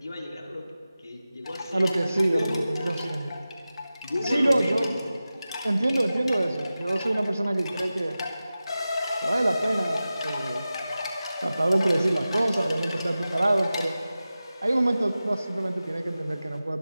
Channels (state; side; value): inverted; both; correlation -0.95